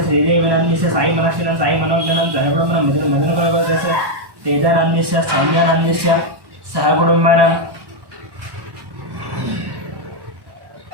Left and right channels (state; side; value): late; left; 1.1 ms